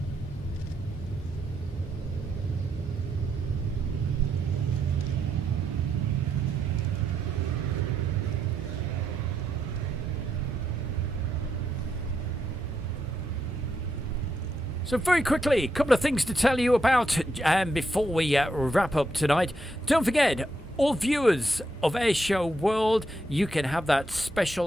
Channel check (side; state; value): both; normal; correlation 0.80